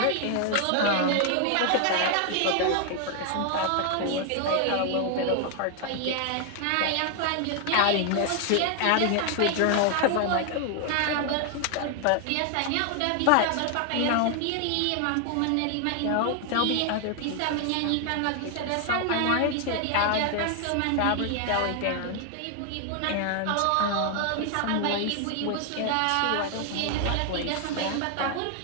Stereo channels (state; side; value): different; both; correlation 0.00